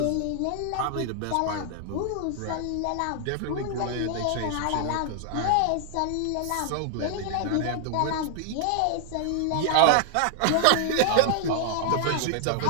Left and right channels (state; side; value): different; both; correlation 0.00